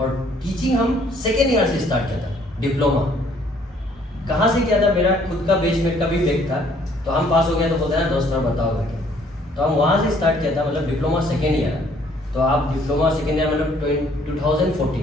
टीचिंग हम सेकेंड ईयर से स्टार्ट किया था। डिप्लोमा कहाँ से किया था, मेरा खुद का बेसमेंट का भी बैक था, तो हम पास हो गया तो बोलते हैं ना दोस्त बताओ करके, तो हम वहाँ से स्टार्ट किया था, मतलब डिप्लोमा सेकेंड ईयर। तो आप डिप्लोमा सेकेंड ईयर मतलब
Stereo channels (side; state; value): both; normal; correlation 0.62